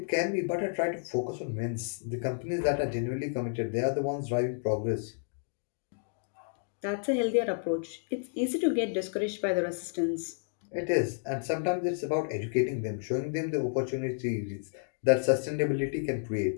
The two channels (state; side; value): silent; right; digital silence